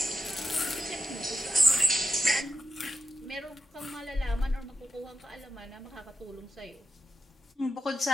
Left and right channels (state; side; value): normal; both; correlation 0.85